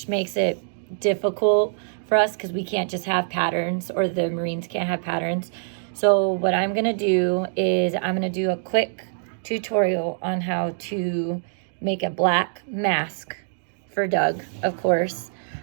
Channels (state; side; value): silent; left; digital silence